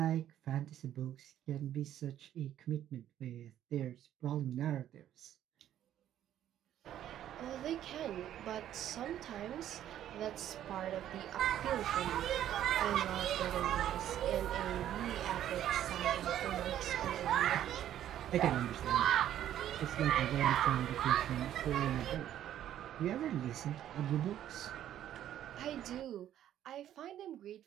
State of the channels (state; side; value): quieter; left; 11.4 dB